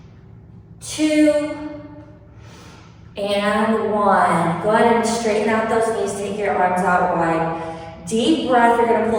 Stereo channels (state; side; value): identical; both; correlation 1.00